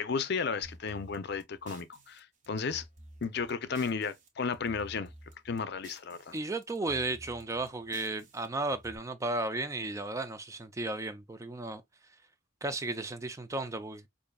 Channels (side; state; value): both; normal; correlation 0.23